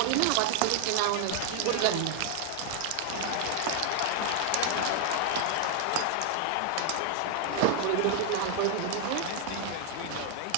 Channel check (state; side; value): different; both; correlation 0.00